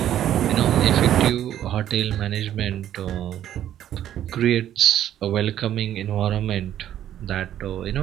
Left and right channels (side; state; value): left; quieter; 11.3 dB